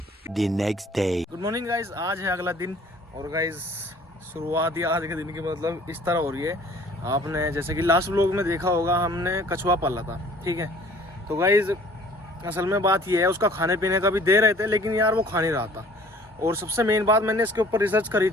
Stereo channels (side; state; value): both; normal; correlation 0.52